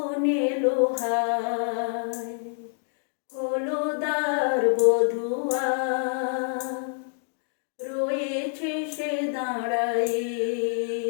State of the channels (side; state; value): right; silent; 60 dB below the other